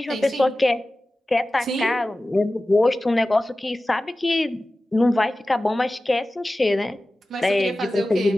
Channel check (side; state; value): both; normal; correlation 0.96